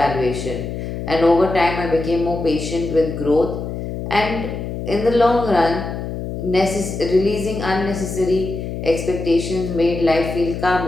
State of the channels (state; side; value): noise; left; hum, 6 dB below the sound